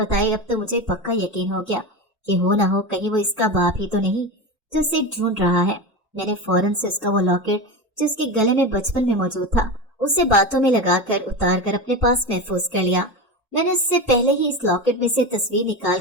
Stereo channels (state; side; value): normal; both; correlation 0.22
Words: अब तो मुझे पक्का यकीन हो गया कि हो ना हो कहीं वो इसका बाप ही तो नहीं जो उसे ढूंढ रहा है। मैंने फौरन से उसका वो लॉकेट जो उसके गले में बचपन में मौजूद था, उसे बातों में लगाकर उतार कर अपने पास महफूज कर लिया। मैंने उससे पहले ही इस लॉकेट में से तस्वीर निकाल